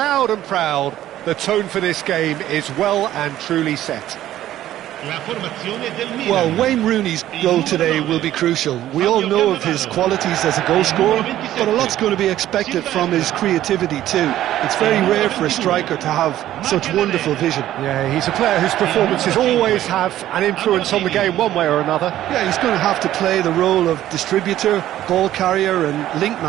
and proud. The tone for this game is well and truly set. Well, Wayne Rooney's goal today will be crucial. We all know of his qualities as a goal scorer, but a lot's going to be expected from his creativity too. It's very rare for a striker to have such wonderful vision. Yeah, he's a player whose performances always have an influence on the game one way or another. Yeah, he's going to have to play the role of distributor, ball carrier and link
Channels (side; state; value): left; quieter; 13.1 dB